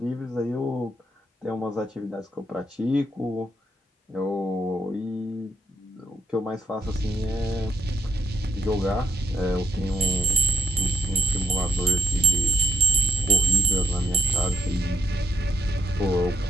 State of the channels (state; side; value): normal; both; correlation 0.74